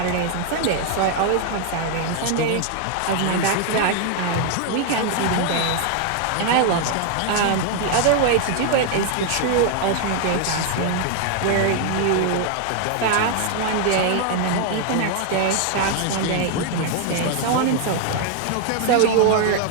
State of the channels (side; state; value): both; different; correlation 0.00